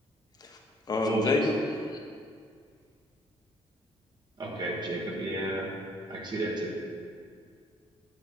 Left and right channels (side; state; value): both; normal; correlation 0.61